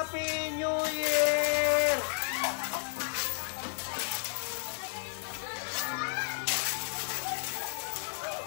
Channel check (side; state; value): right; silent; 56 dB below the other